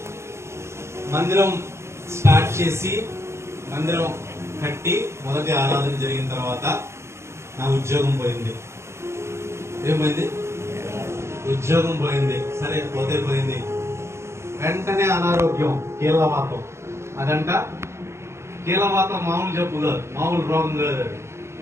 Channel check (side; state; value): left; late; 0.13 ms